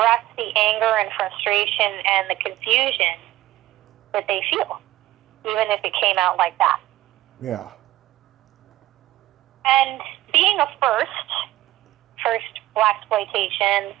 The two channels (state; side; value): quieter; left; 15.6 dB